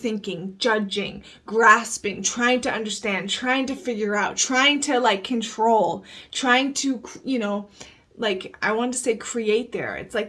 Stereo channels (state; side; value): identical; both; correlation 1.00